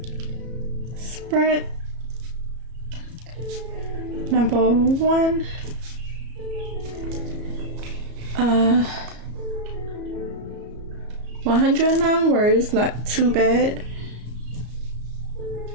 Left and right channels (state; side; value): late; left; 34 ms